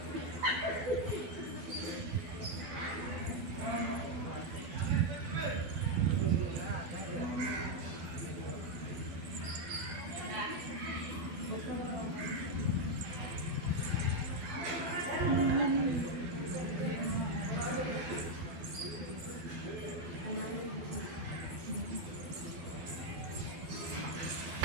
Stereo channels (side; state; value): left; late; 12 ms